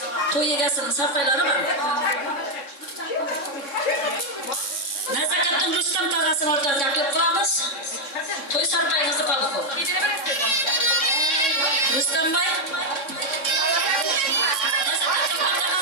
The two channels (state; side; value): late; right; 3.6 ms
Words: Toy ligasının sarpayları var. Nazakatın Rüstem tağasını ortaya takip kılamız. Toy sarpayınızı kaldık o. Rüstem Bey. Nazakatın